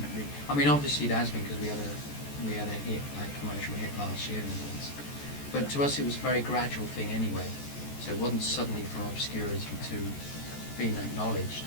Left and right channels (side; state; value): right; late; 14 ms